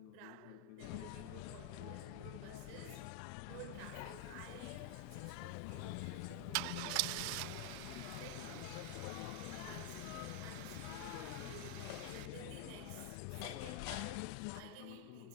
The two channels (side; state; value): both; different; correlation 0.00